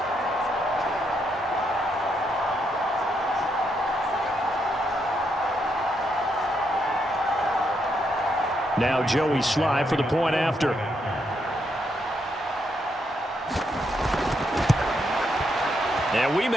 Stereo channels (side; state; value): both; normal; correlation 0.78